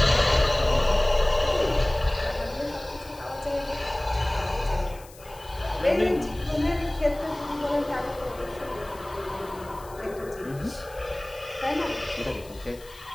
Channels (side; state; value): left; noise; hiss, 22 dB below the sound